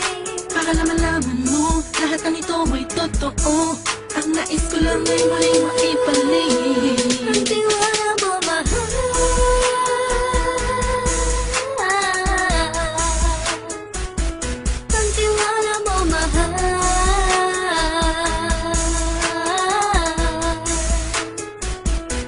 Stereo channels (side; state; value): both; identical; correlation 1.00